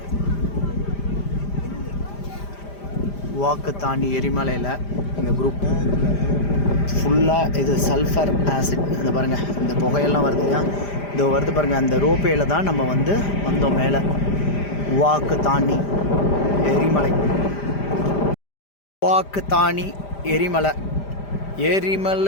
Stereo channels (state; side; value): late; right; 5.0 ms